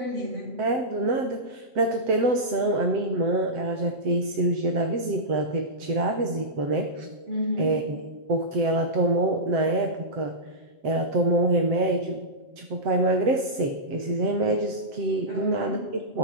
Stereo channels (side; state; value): left; late; 7.8 ms